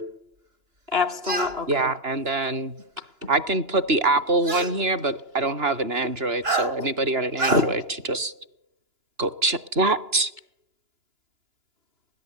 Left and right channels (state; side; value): late; left; 2.9 ms